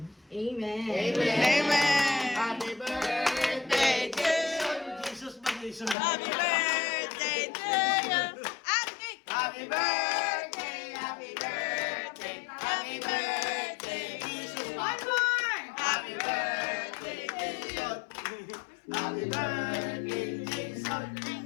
Amen. Amen. Happy birthday to Jesus mag-isun. Happy birthday to you. Happy birthday, happy birthday, happy birthday, Jesus. One more. Happy birthday, Jesus. Happy birthday, Jesus.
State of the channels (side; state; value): right; drops out; at 6.0 s